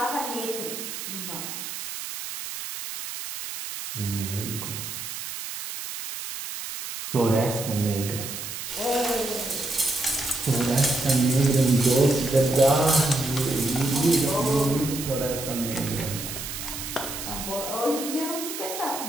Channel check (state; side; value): noise; right; hiss, 7 dB below the sound